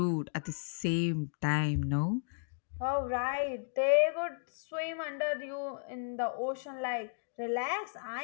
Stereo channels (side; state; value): right; silent; digital silence